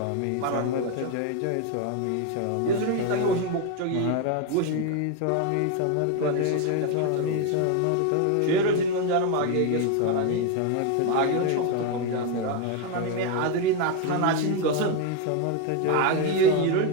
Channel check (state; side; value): different; both; correlation 0.02